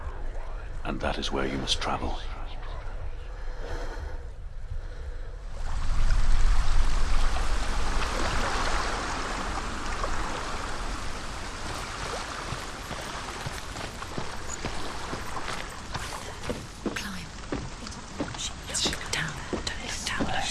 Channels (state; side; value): identical; both; correlation 1.00